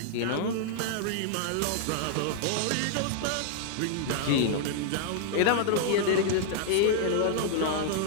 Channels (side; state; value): both; different; correlation -0.01